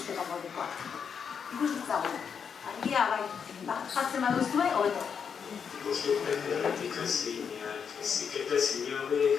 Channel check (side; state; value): right; quieter; 6.8 dB